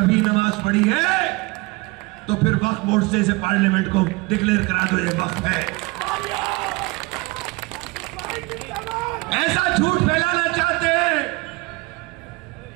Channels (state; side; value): quieter; left; 24.3 dB